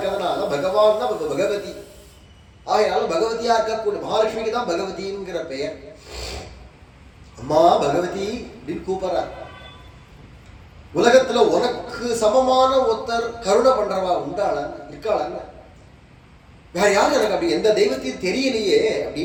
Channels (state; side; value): identical; both; correlation 1.00